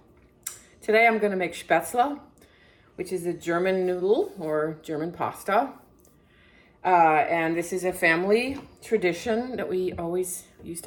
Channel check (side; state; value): both; identical; correlation 1.00